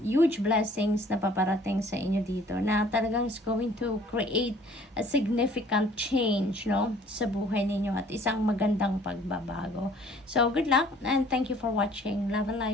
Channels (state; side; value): normal; both; correlation 0.55